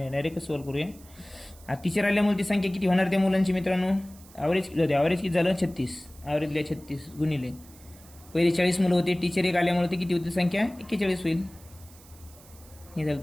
डायरेक्ट सॉल्व्ह करूया. आता टीचर आल्यामुळे ती संख्या किती होणार त्या मुलांची मित्रांनो. ॲव्हरेज किती झालं 36. ॲव्हरेजला 36 गुणिले पहिले 40 मुलं होते. टीचर एक आल्यामुळे ते किती होती संख्या 41 होईल. हे झालं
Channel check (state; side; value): noise; right; hiss, 23 dB below the sound